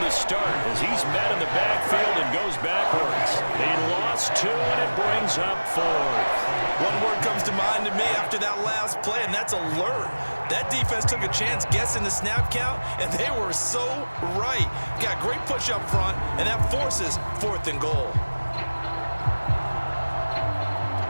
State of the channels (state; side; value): inverted; both; correlation -1.00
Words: the start as he's met in the backfield and goes backwards. He lost 2, and it brings up 4th. One word comes to mind to me after that last play, and that's alert. That defense took a chance guessing the snap count, and they were so right. Got great push up front, and that forces 4th and goal.